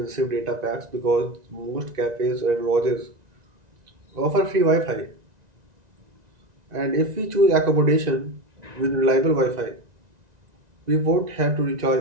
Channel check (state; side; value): late; left; 1.9 ms